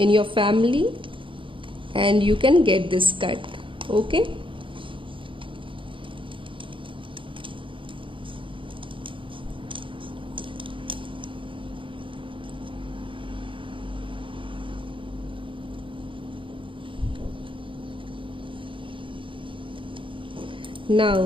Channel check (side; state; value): left; late; 0.25 ms